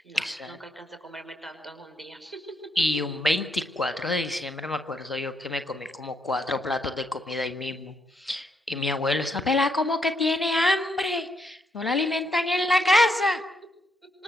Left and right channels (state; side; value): normal; both; correlation 0.76